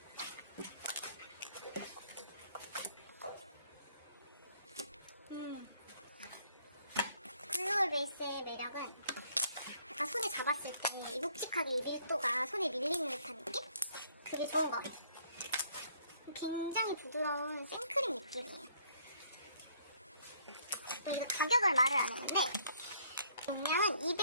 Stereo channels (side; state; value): both; inverted; correlation -0.64